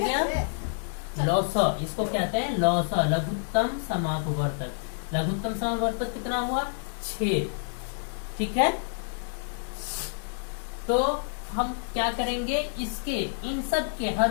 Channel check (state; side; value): silent; right; digital silence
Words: लौसा, इसको कहते हैं लौसा, लघुत्तम समापवर्तक। लघुत्तम समापवर्तक कितना हुआ? 6। ठीक है, तो हम क्या करेंगे, इसके इन सब के